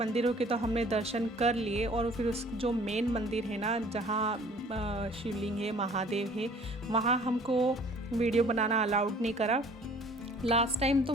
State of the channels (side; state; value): both; normal; correlation 0.53